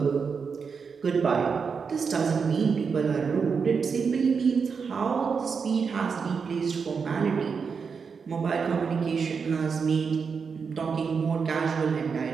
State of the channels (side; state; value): left; quieter; 5.7 dB